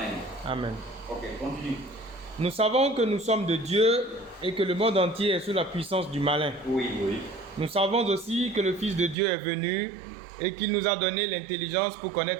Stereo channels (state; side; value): drops out; left; at 9.2 s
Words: Amen. Ok, continue. Nous savons que nous sommes de Dieu et que le monde entier est sous la puissance du malin. Oui, oui. Nous savons aussi que le Fils de Dieu est venu et qu'il nous a donné l'intelligence pour